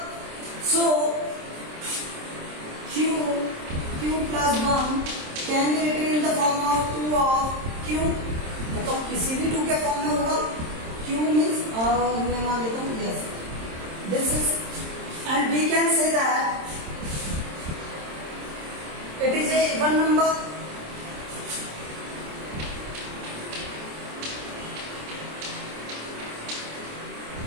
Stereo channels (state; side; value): late; left; 27 ms